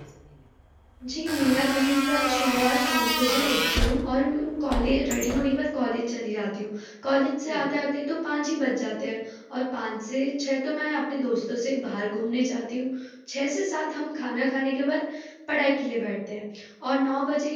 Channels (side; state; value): both; identical; correlation 1.00